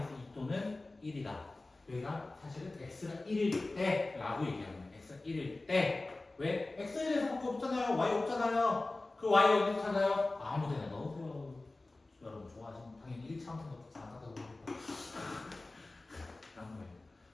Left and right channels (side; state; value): right; quieter; 3.1 dB